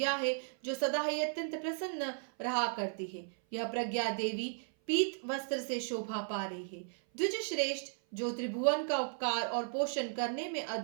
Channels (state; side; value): silent; left; 54 dB below the other